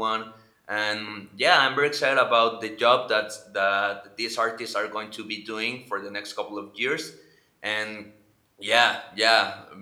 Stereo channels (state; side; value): identical; both; correlation 1.00